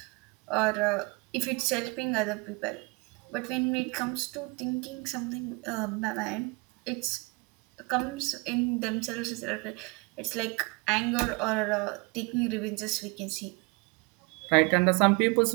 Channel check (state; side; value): quieter; left; 29.0 dB